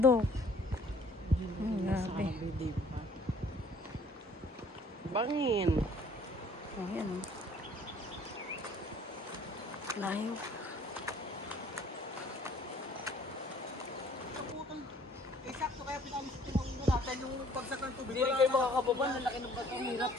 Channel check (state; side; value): normal; both; correlation 0.56